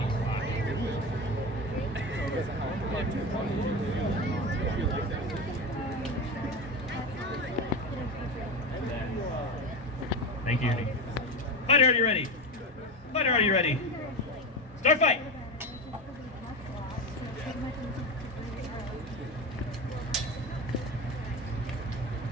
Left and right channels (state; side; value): normal; both; correlation 0.21